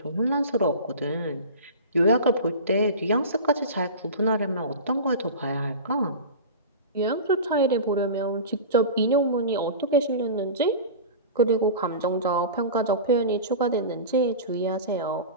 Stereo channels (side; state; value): both; inverted; correlation -0.31